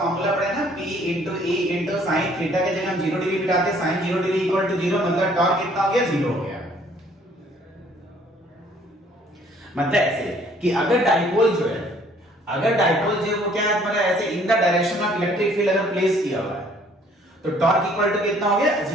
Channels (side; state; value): both; normal; correlation 0.59